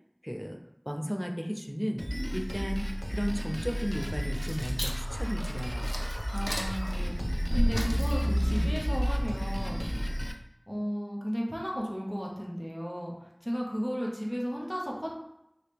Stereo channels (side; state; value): both; identical; correlation 1.00